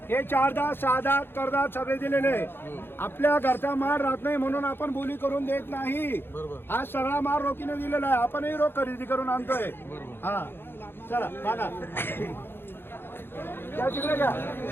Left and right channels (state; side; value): late; right; 0.10 ms